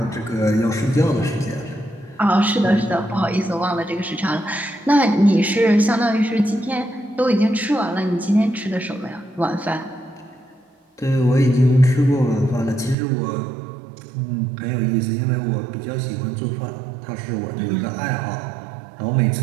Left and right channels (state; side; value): drops out; left; at 13.0 s